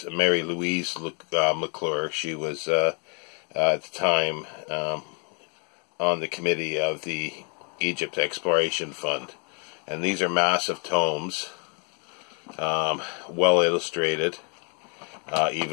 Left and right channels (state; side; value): quieter; right; 37.6 dB